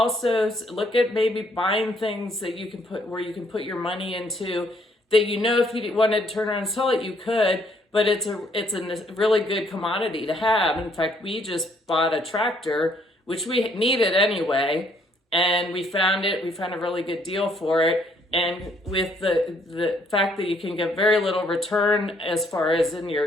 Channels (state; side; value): normal; both; correlation 0.67